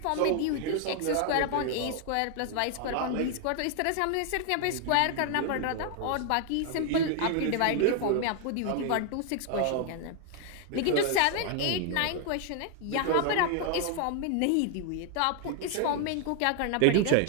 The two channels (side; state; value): both; different; correlation 0.00